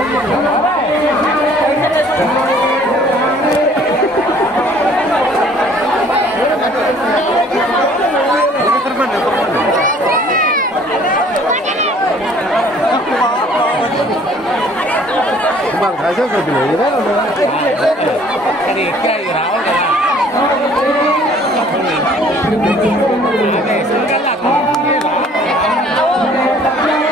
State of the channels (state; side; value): normal; both; correlation 0.55